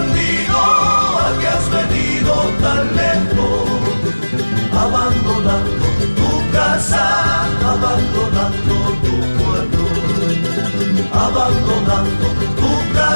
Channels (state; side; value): inverted; both; correlation -1.00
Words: ¿a qué has venido tan lejos? Abandonando tu casa, abandonando tu pueblo. Abandonando tu